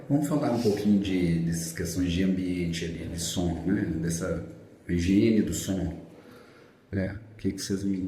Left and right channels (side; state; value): both; identical; correlation 1.00